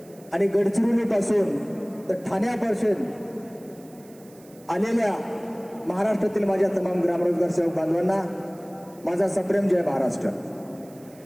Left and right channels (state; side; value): noise; right; hiss, 26 dB below the sound